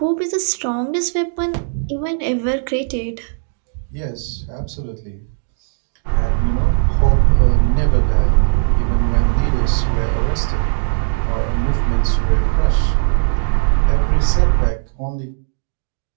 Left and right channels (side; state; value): left; silent; digital silence